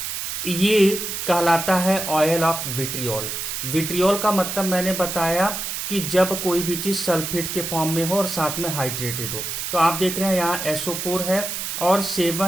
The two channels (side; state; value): right; noise; hiss, 4 dB below the sound